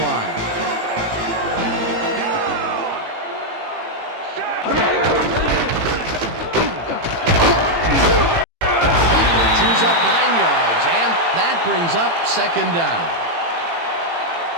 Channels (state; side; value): late; left; 18 ms